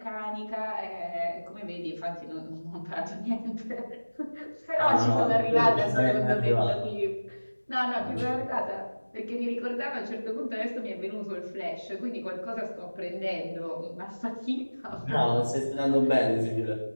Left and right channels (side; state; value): both; inverted; correlation -1.00